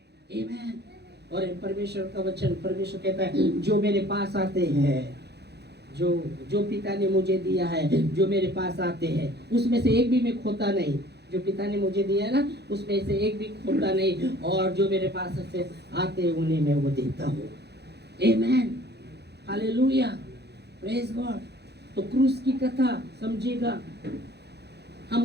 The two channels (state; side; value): late; left; 0.48 ms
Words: आमीन। और परमेश्वर का वचन, परमेश्वर कहता है जो मेरे पास आते हैं, जो पिता ने मुझे दिया है, जो मेरे पास आते हैं उसमें से एक भी मैं खोता नहीं। जो पिता ने मुझे दिया है ना उसमें से एक भी खोता नहीं, और जो मेरे पास से आते उन्हें मैं वो देता हूँ। आमीन, हालेलुया, प्रेज गॉड। तो क्रूस की कथा समझिएगा,